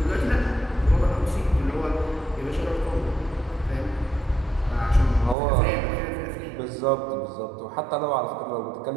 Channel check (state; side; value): drops out; left; at 5.4 s